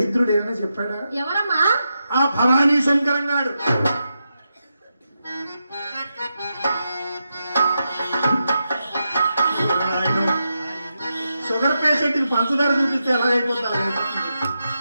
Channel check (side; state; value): both; inverted; correlation -0.87